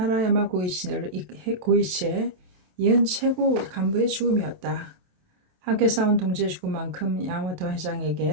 고이치의 이은 최고 간부의 죽음이었다. 함께 싸운 동지의 죽음만큼 야마모토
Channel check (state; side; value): late; left; 27 ms